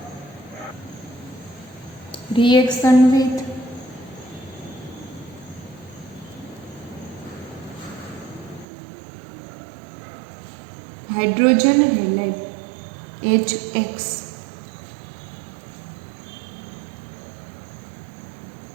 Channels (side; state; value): left; drops out; at 8.7 s